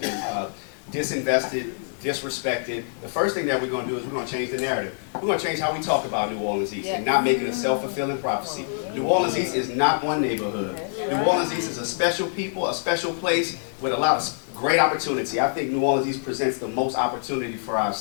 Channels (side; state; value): right; silent; digital silence